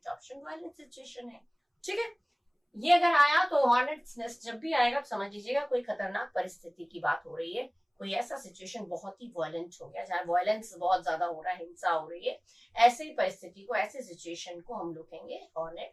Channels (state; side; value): identical; both; correlation 1.00